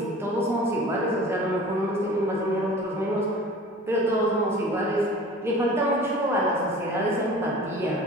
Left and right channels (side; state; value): both; normal; correlation 0.42